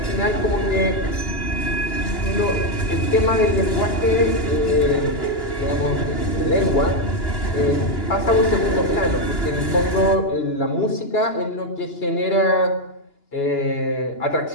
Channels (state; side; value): late; right; 2.9 ms